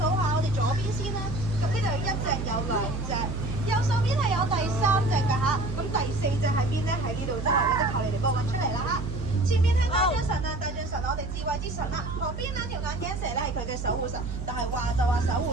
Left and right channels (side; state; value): right; noise; hum, 6 dB below the sound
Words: 下，我哋左邊先啦。咁呢度有1隻，有2隻，右手邊係有第3隻㗎嚇。咁第4隻喺邊咧？喺呢度啫，你哋求你哋幫我揾出嚟啦嚇。前面係大象神啊，大象神我哋智慧之神啦。旁邊兩條眼鏡蛇咧係佢嘅守護神，但係話就話守護